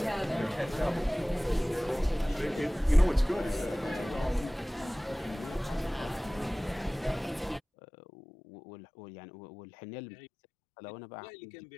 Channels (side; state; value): right; drops out; at 7.6 s